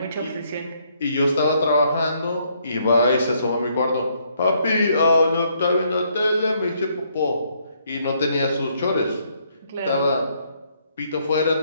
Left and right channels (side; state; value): both; inverted; correlation -0.71